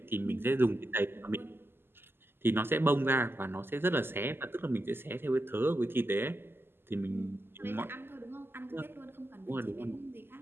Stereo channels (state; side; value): late; left; 0.11 ms